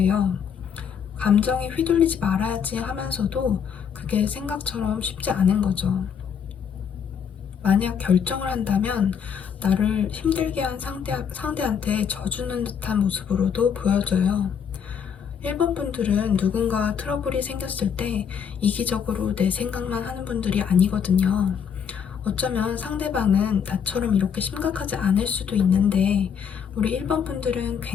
감정에 휘둘리지 말아야지 하면서도 그게 생각처럼 쉽지 않은 거죠. 만약 결정을 한다면 나를 힘들게 한 상대한테 져주는 듯한 모습으로도 보여져요. 1번 분들은 누군가와 트러블이 생겼을 때 이기적으로 내 생각만 하는 분들이 아니거든요. 어쩌면 상대방은 나처럼 이렇게 심각하지 않을 수도 있는데 우리 1번 분들은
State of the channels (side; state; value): right; quieter; 7.4 dB